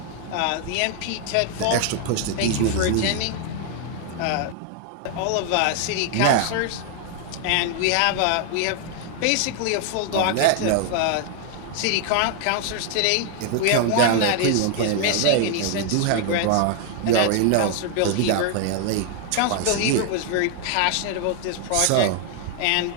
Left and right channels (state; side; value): different; both; correlation 0.00